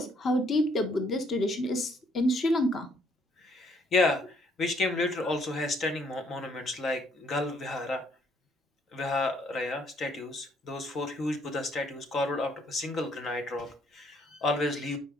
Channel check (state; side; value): normal; both; correlation 0.67